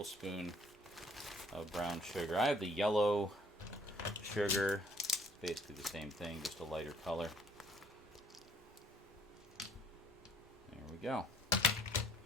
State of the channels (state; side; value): normal; both; correlation 0.59